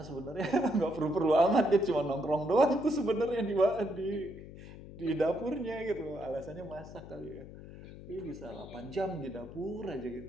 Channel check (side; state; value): left; noise; hum, 15 dB below the sound